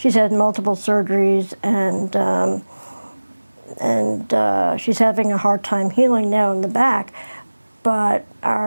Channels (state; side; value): inverted; both; correlation -1.00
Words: had multiple surgeries, and she's having a hard time healing now in the back. But